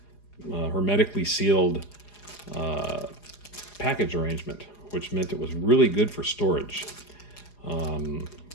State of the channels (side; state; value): right; late; 4.9 ms